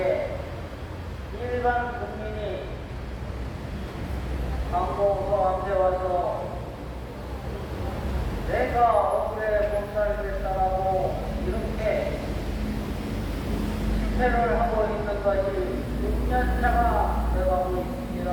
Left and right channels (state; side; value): identical; both; correlation 1.00